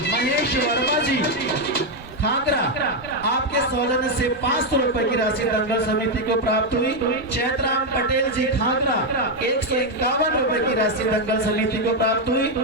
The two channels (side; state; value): both; normal; correlation 0.04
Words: महेश वर्मा जी खाकरा आपके सौजन्य से 500 रुपए की राशि दंगल समिति को प्राप्त हुई। चैतराम पटेल जी खाकरा 151 रुपए की राशि दंगल समिति को प्राप्त हुई।